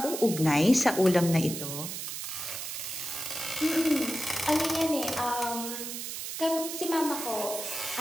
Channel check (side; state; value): right; noise; hiss, 6 dB below the sound